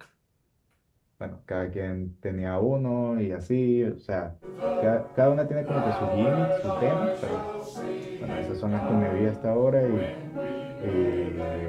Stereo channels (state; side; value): identical; both; correlation 1.00